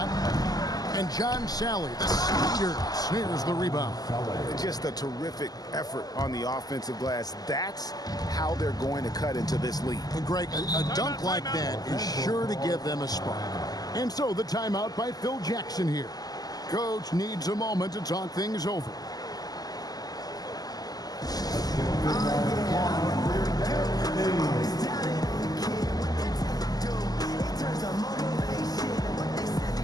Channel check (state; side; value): late; right; 0.18 ms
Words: And John Sally, the speeder, snares the rebound. Just a terrific effort on the offensive glass. That's how they're going to cut into this lead. And Greg, a dunk like that is sure to give them a spark. And so the timeout by Phil Jackson here. Coach needs a moment to talk things over.